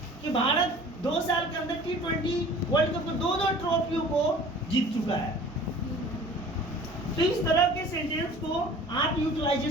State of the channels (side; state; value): both; normal; correlation 0.46